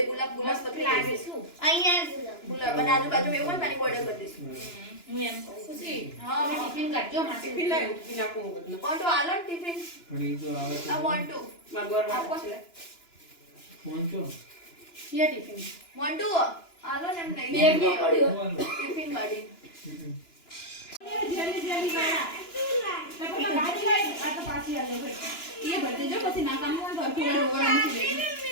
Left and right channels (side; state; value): right; late; 2.9 ms